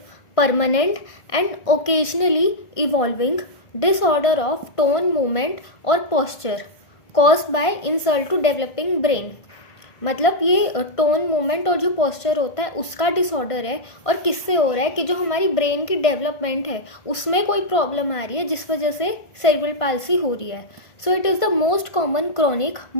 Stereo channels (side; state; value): right; late; 1.5 ms